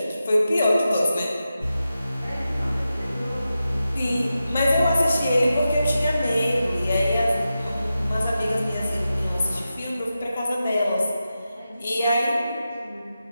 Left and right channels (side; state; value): both; inverted; correlation -0.91